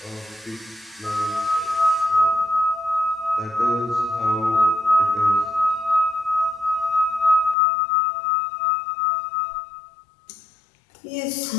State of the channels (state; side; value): drops out; right; at 7.6 s